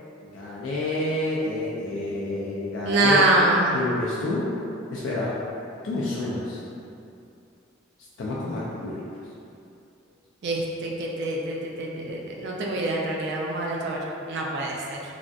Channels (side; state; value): both; normal; correlation 0.31